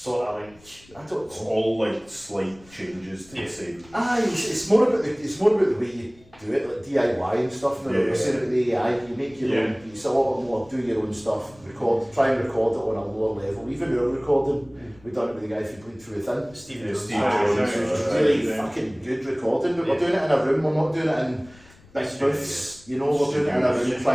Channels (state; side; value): noise; left; rumble, 26 dB below the sound